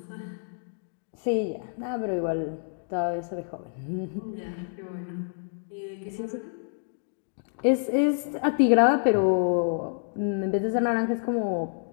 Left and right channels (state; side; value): silent; right; digital silence